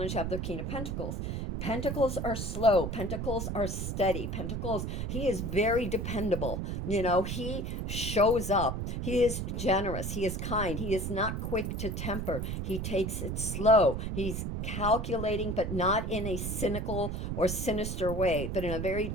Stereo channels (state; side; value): noise; right; rumble, 3 dB below the sound